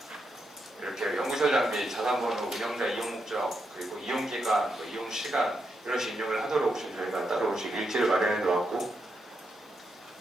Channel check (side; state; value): both; normal; correlation 0.82